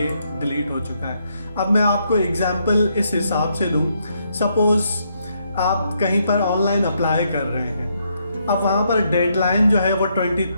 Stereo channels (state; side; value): inverted; both; correlation -0.76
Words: डिलीट हो चुका है। अब मैं आपको एग्जांपल इस हिसाब से दूँ, सपोज़ आप कहीं पर ऑनलाइन अप्लाई कर रहे हैं, अब वहाँ पर डेडलाइन जो है वो